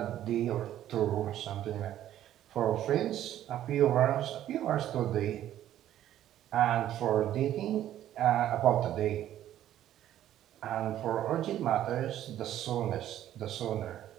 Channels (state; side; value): quieter; left; 12.1 dB